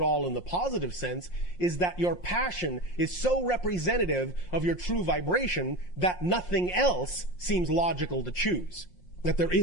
all in the positive sense is that your passion is so representative of your true vibration that nothing else seems logical to choose. That there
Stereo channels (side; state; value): right; late; 5.6 ms